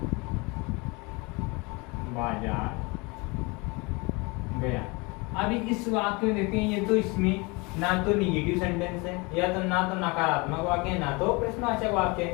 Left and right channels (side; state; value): right; quieter; 27.2 dB